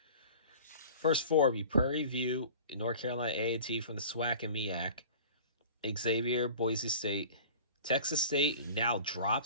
First 4 be Prairie View, North Carolina A&T from the SWAC and MEAC, Xavier, Boise State. Texas State now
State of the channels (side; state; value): both; inverted; correlation -0.41